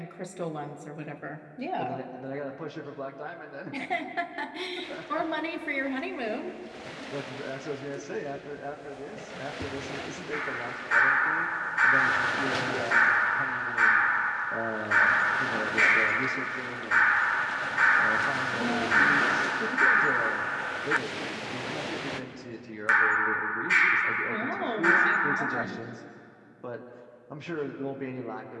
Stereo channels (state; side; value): identical; both; correlation 1.00